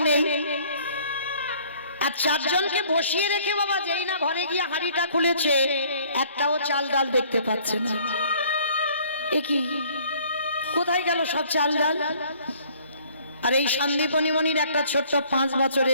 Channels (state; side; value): inverted; both; correlation -0.57